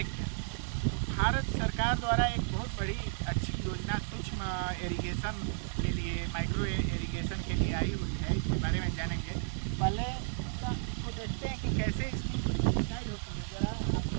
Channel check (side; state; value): left; silent; 56 dB below the other